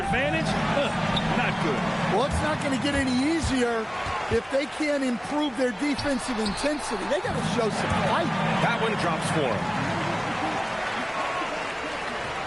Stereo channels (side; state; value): both; identical; correlation 1.00